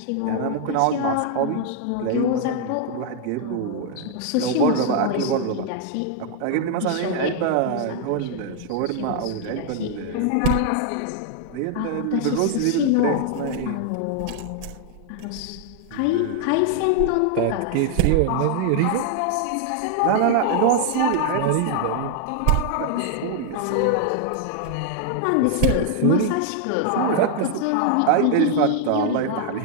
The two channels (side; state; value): both; different; correlation 0.00